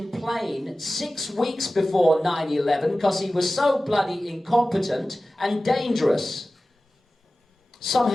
plane 6 weeks before 9/11 because he was so bloody incompetent and dangerous.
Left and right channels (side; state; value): both; normal; correlation 0.96